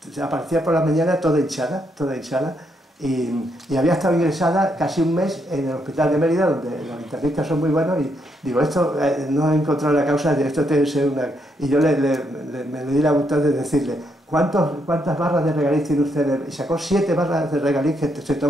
aparecía por la mañana toda hinchada, y había estado ingresada casi un mes en el hospital de Mérida, donde los internistas son muy buenos, y digo, esto no he encontrado la causa de esto, tiene que ser una... Y yo me le di la voluntad de decirle, ¿cuántas barras de regaliz tiene usted? Y sacó 7 barras de regaliz que se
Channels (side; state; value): both; normal; correlation 0.77